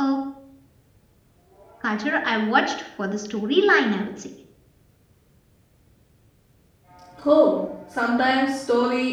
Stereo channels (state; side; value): identical; both; correlation 1.00